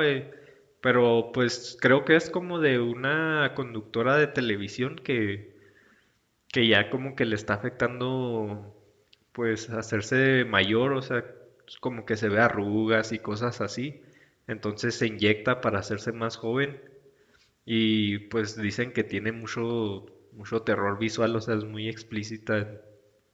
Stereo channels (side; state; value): both; identical; correlation 1.00